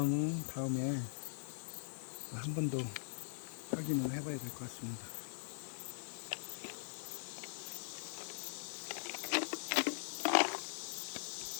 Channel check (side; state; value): right; silent; digital silence